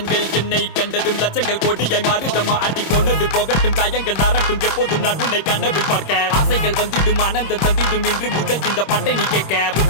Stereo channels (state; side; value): late; right; 26 ms